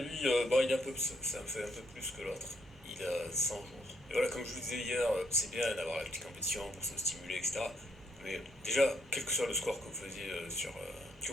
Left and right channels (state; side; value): normal; both; correlation 0.73